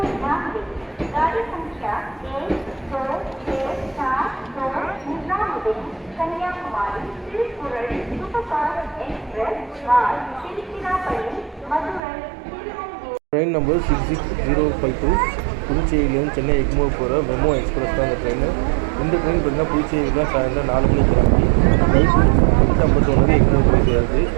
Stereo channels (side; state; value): left; drops out; at 12.0 s